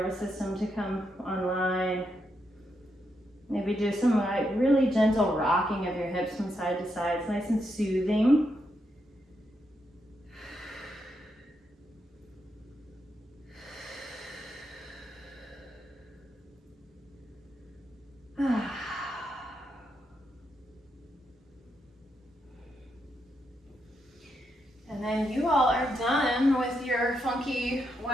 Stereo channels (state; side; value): normal; both; correlation 0.81